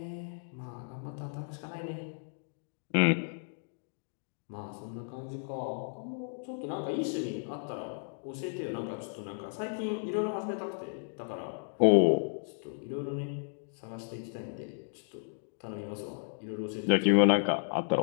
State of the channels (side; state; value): right; silent; digital silence